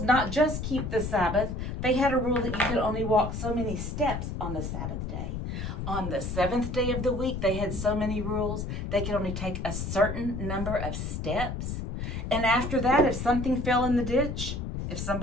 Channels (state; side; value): noise; left; rumble, 4 dB below the sound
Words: not just keep the Sabbath. They had a rule that you could only walk so many steps on the Sabbath day. On the 7th day of the week, they had so many rules. They could only take a certain number of steps. And after that, if something fell in the ditch, if